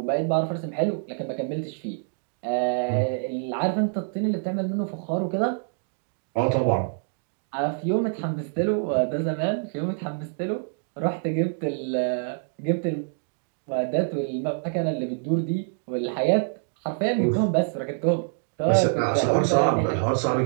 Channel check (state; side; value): silent; left; digital silence